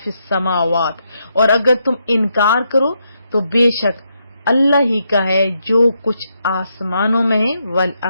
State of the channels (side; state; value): both; inverted; correlation -0.80